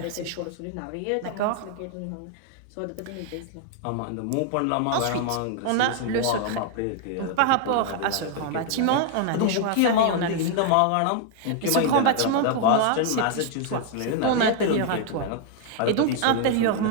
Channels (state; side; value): different; both; correlation 0.00